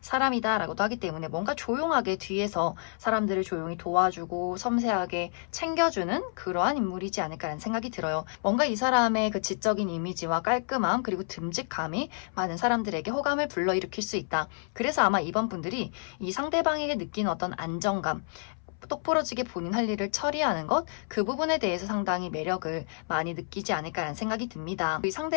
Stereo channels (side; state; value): right; silent; 58 dB below the other